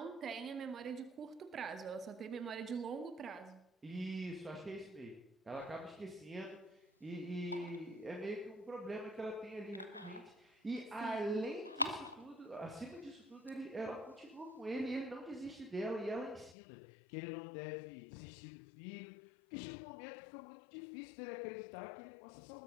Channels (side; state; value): right; drops out; at 16.6 s